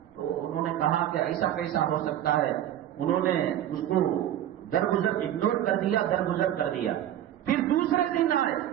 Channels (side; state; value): left; quieter; 11.6 dB